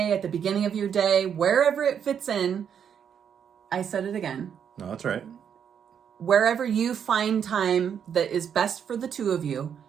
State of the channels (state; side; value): quieter; left; 8.0 dB